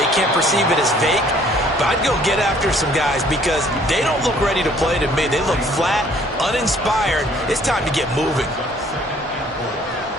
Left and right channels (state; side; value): normal; both; correlation 0.59